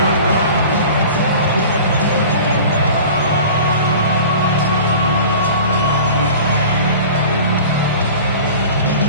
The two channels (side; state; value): both; inverted; correlation -0.40